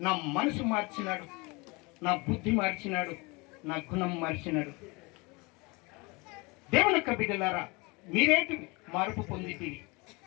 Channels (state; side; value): quieter; right; 26.6 dB